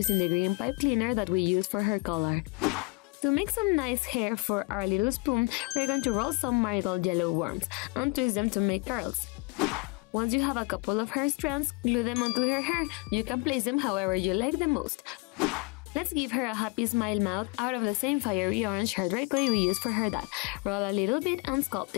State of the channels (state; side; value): quieter; right; 27.9 dB